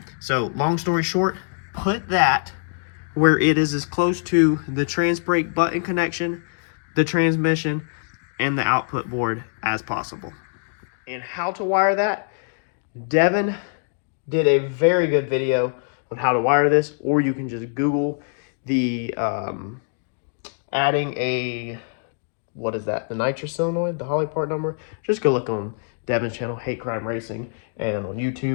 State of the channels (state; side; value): silent; right; digital silence